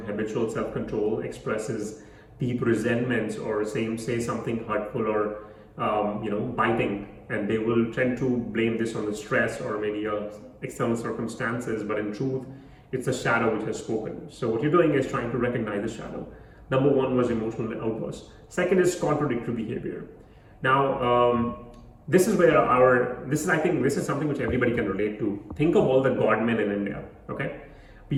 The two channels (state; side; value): identical; both; correlation 1.00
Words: habitual self-control, expresses deep resentments, or say something hurtful or biting, and they will tend to blame this on the stress or maybe external circumstances, but in truth, it's a shadow which has spoken. So what you're doing is trying to recognize the shadow. Number one was emotional outburst. Second is contradictory behavior. Now, this is where I think this is something which everybody can relate to. Think of all the godmen in India, okay?